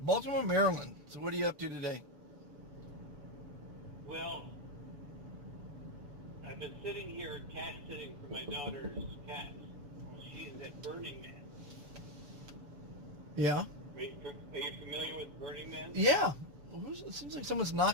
Maryland. So what are you up to today? Well, I've been sitting here cat sitting for my daughter's cats. She's at Burning Man. Yeah. Are you familiar with Burning Man? Yeah. Well, it seems like someone's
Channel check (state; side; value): late; left; 6.9 ms